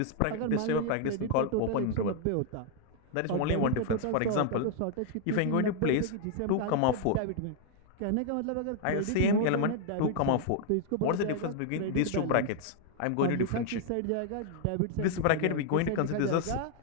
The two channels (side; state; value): both; different; correlation 0.00